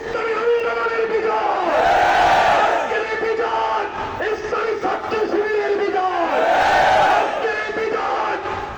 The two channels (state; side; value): identical; both; correlation 1.00